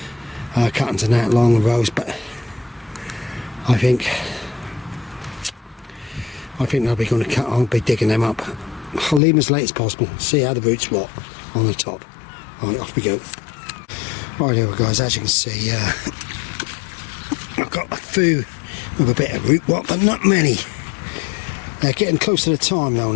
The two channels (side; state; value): right; drops out; at 9.2 s